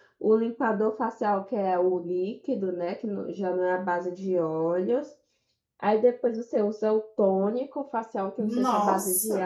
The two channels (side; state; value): both; identical; correlation 1.00